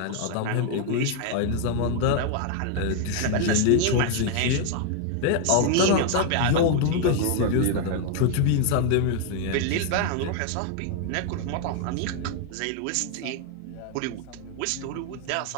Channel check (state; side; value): different; both; correlation 0.00